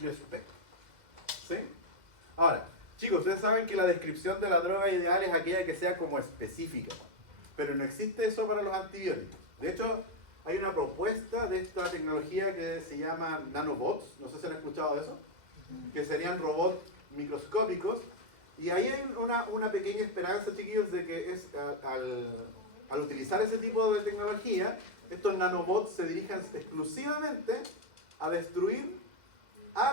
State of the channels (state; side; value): late; left; 2.0 ms